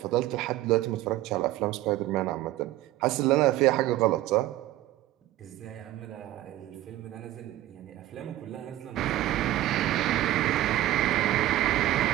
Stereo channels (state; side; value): quieter; left; 15.0 dB